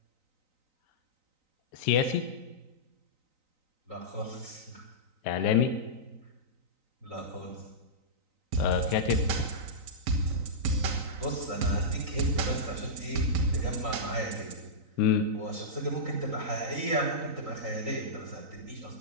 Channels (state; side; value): late; left; 3.9 ms